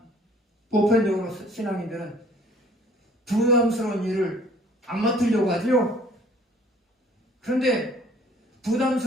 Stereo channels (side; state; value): both; normal; correlation 0.55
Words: 보편적으로 신앙인들은 부담스러운 일을 안 맡으려고 하죠. 그런데